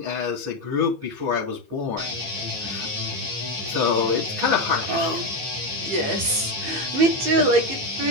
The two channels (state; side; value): late; left; 15 ms